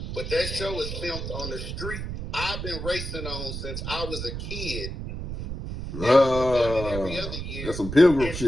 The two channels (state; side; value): noise; right; rumble, 6 dB below the sound